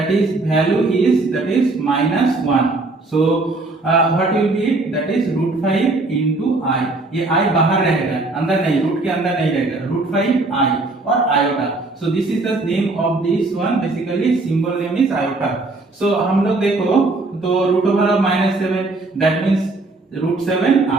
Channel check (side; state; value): left; quieter; 3.2 dB